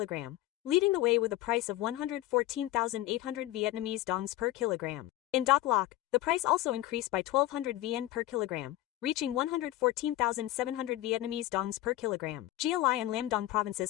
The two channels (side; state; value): right; quieter; 15.4 dB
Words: leading the way with a price of 114,800 Vietnamese dongs per kilogram. In Doc Loc, the price also increased by 1,200 VN per kilogram, reaching 114,700 Vietnamese dongs per kilogram. Gia Lai and Lam Dong